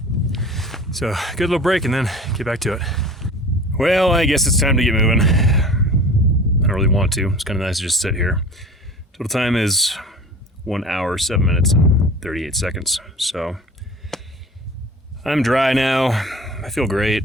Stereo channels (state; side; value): normal; both; correlation 0.40